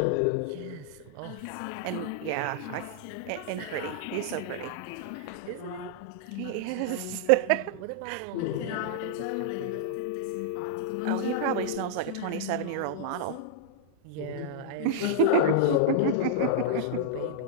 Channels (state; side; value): different; both; correlation -0.02